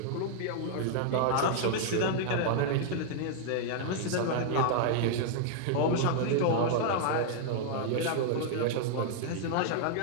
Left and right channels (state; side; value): different; both; correlation -0.01